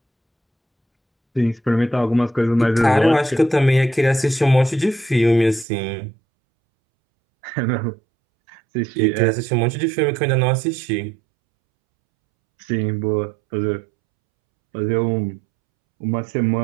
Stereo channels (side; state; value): left; drops out; at 5.7 s